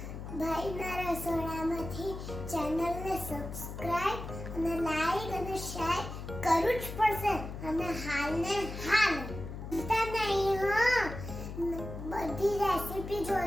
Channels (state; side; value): noise; left; hum, 8 dB below the sound